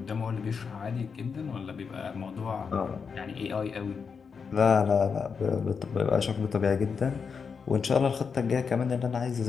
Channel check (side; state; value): right; quieter; 5.8 dB